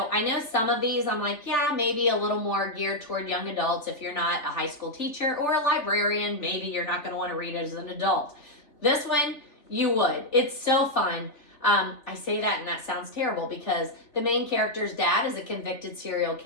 I know some of these I'm like, yeah, maybe a little more geared toward young adults. If you're not a high school teacher or a librarian, maybe you're not going to want to read it as an adult. This one, you would. It's so fun. I say that and that sounds terrible because the main character's dad is a convicted serial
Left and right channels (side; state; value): right; late; 3.3 ms